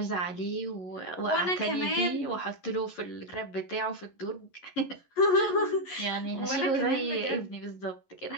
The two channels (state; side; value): late; right; 11 ms